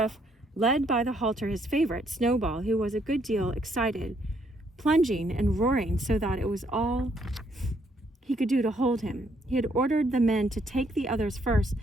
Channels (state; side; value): normal; both; correlation 0.71